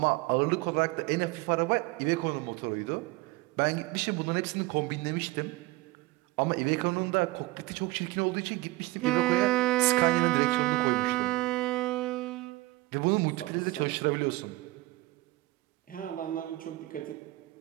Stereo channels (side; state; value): left; quieter; 19.8 dB